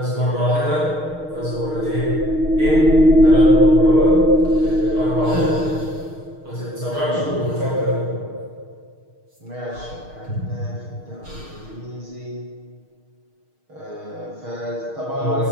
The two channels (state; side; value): late; left; 6.5 ms